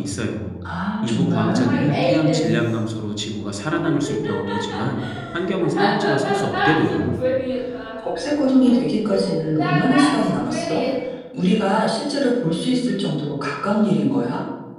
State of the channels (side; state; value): both; identical; correlation 1.00